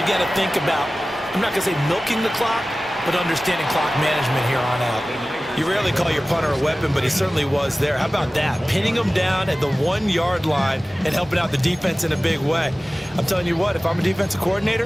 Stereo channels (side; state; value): both; normal; correlation 0.97